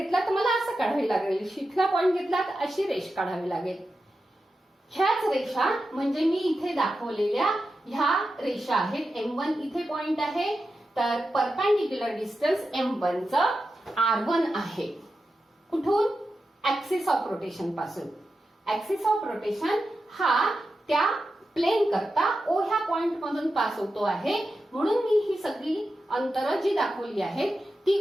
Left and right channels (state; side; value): normal; both; correlation 0.90